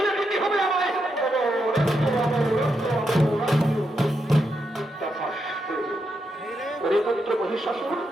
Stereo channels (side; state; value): both; normal; correlation 0.83